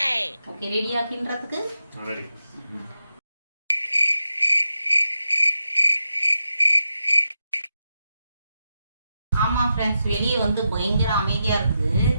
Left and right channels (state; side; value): inverted; both; correlation -0.87